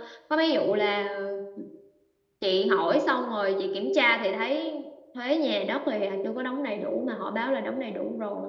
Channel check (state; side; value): identical; both; correlation 1.00